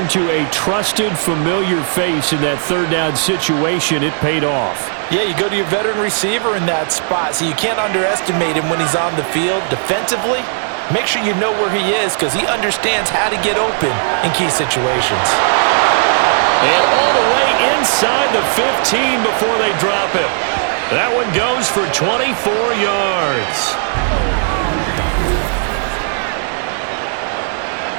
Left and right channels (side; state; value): left; silent; 61 dB below the other